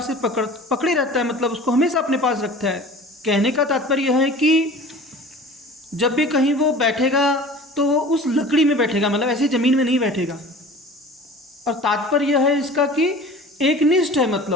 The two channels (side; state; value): both; normal; correlation 0.41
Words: से पकड़े रहता है, मतलब उसको हमेशा अपने पास रखता है। कहने का तात्पर्य यह है कि जब भी कहीं वो बैठेगा तो वो उस लकड़ी में बैठेगा, मतलब ऐसे ज़मीन में नहीं बैठेगा। और तात्पर्य यह है इसका कि एकनिष्ठ है,